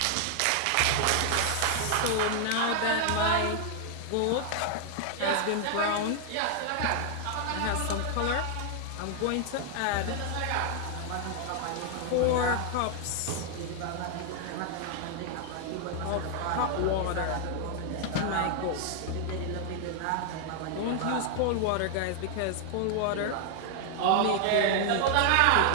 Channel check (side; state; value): both; different; correlation 0.00